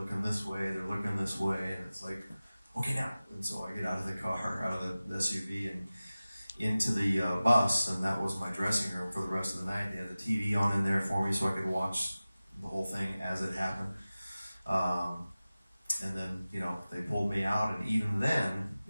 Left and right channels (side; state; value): both; inverted; correlation -0.97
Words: this way, and it's like, okay, now. And so I get out of the car, out of the SUV, and into the bus. And that was my dressing room for the rest of the night. They had the TV on in there for me so I could watch the whole thing as it happened. And then, they pulled me out, and even then,